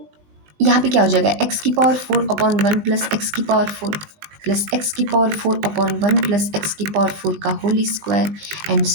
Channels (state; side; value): late; left; 20 ms